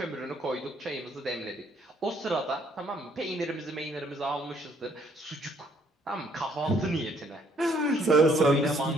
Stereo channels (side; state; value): both; normal; correlation 0.66